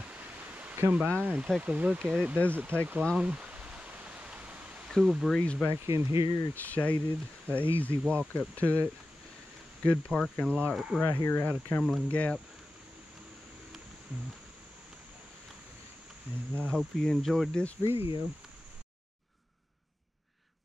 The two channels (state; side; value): normal; both; correlation 0.94